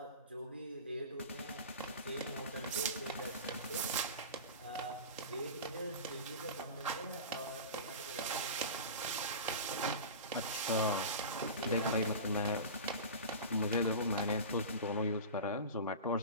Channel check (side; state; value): both; inverted; correlation -0.30